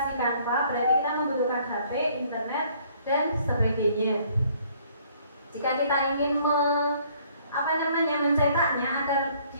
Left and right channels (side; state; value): both; inverted; correlation -0.61